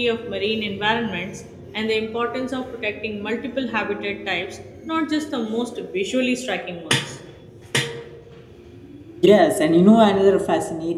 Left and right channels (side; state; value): both; identical; correlation 1.00